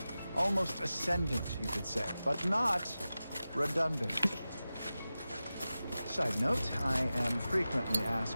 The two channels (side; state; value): both; inverted; correlation -0.94